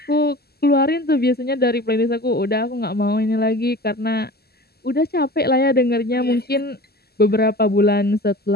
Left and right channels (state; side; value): late; right; 0.46 ms